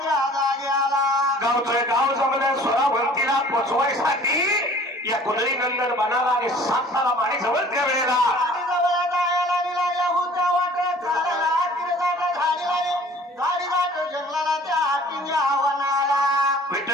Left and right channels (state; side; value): normal; both; correlation 0.50